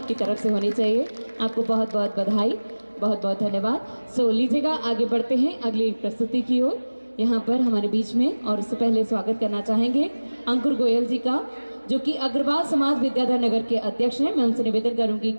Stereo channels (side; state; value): both; inverted; correlation -1.00